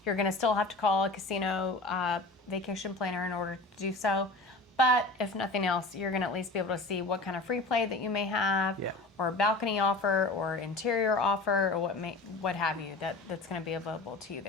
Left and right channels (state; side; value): quieter; right; 3.1 dB